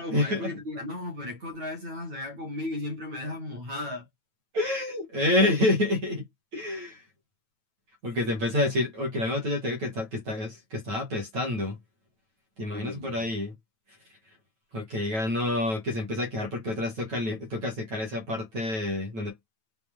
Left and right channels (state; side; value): late; left; 9.1 ms